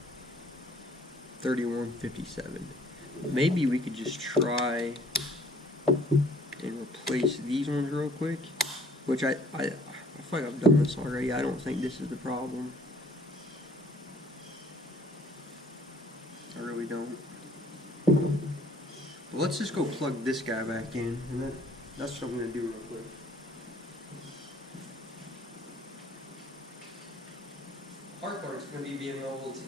maybe we could just try and replace these ones real quick, which I feel like I've done this already. I don't think this is the problem. I really don't. But let's just go plug this guy back in, and that's what I'm going to do real quick. The hard part is going to be being able to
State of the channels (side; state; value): both; normal; correlation 0.56